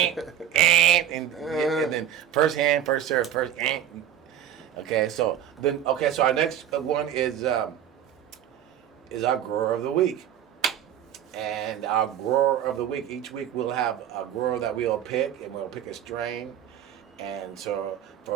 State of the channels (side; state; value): left; quieter; 10.2 dB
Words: And then first hand, first serve, first Okay, so our next one is our grower of the week. And our grower of the week, each week we'll have a grower that we'll pick, and we'll pick a strain. And so